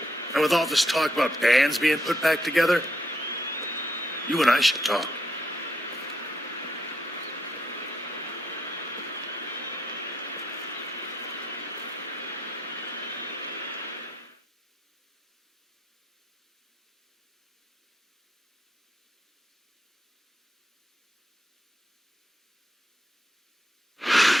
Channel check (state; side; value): normal; both; correlation 0.77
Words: And with all this talk about bands being put back together, you and I should talk.